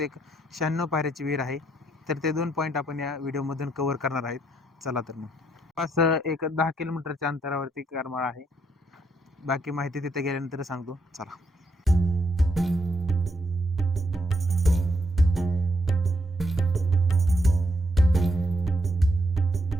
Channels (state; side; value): normal; both; correlation 0.75